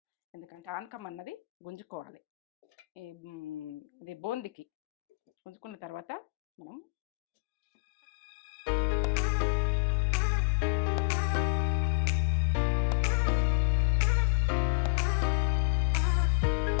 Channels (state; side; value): drops out; right; at 6.2 s